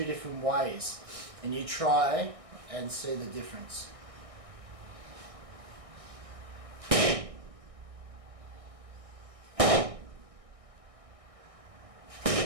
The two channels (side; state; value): left; late; 1.6 ms